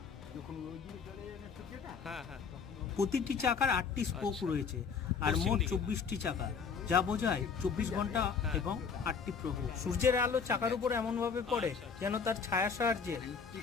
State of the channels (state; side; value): quieter; right; 5.9 dB